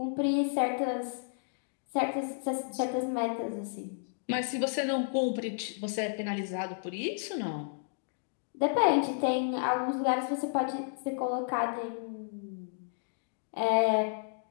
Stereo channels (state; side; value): silent; right; digital silence